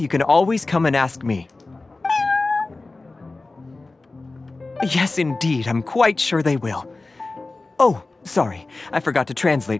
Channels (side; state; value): right; quieter; 3.4 dB